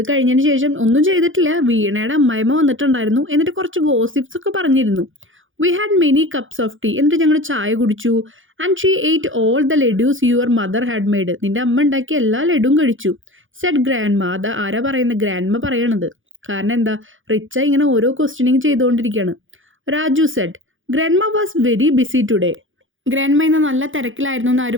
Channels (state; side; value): late; left; 0.58 ms